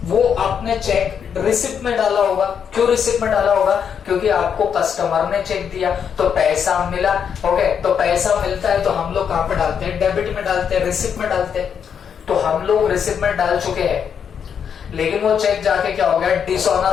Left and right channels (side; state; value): right; quieter; 7.5 dB